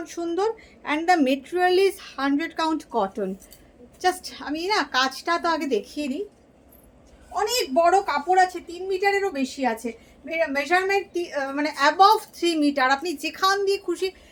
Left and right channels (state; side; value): identical; both; correlation 1.00